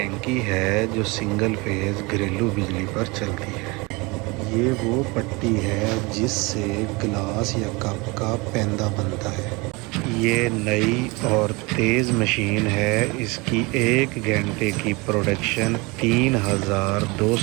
है जो सिंगल फेज़ घरेलू बिजली पर चलती है। ये वो पट्टी है जिससे गिलास या कप का पैंदा बनता है। ये नई और तेज़ मशीन है। इसकी 1 घंटे की प्रोडक्शन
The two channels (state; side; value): quieter; left; 26.0 dB